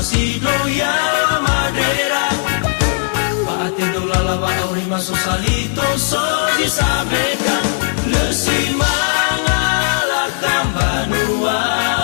ya madera. Lava aurima susalito soy sabekan lesimana la cambanua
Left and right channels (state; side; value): silent; right; 68 dB below the other